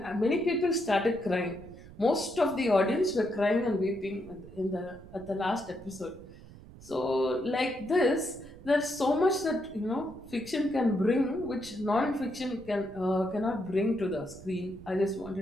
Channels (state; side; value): noise; right; rumble, 19 dB below the sound